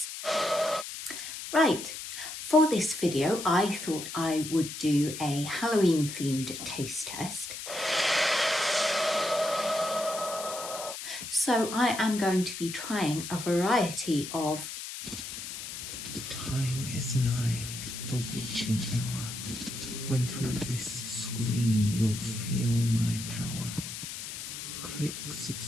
Right, for this video I thought I would do a Halloween themed taste test. So I am going to be trying a variety of... The time is nigh, the witching hour, when through this screen you'll feel my power. Click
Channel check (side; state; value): left; noise; hiss, 8 dB below the sound